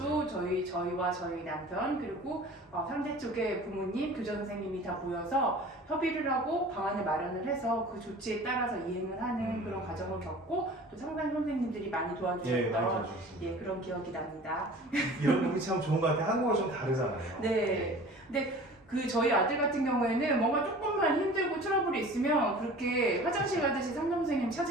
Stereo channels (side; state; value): both; normal; correlation 0.43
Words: 저희와 저희 남편 그리고 상대 쪽의 부모님, 교장 선생님이 다 모여서 협의를 하고 방안을 마련을 해서 그 조치에 따라서 이행을 하는 그런 과정을 겪고 또 상담 선생님들이 많이 예, 많이 도와주셨던 도와주셨습니다. 예, 그런 기억이 납니다. 이런 경우 참 좋은 것 같아요. 한국어 좀 다르잖아요. 네. 근데 그 저희 아들 같은 경우에는 뭔가 조금만 힘들고 트러블이 있으면 그렇게 화장실 가듯이 상담 선생님